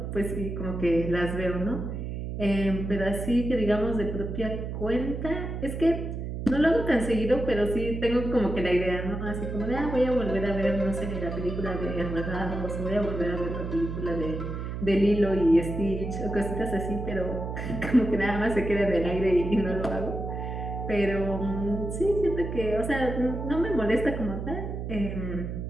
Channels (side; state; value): right; noise; hum, 5 dB below the sound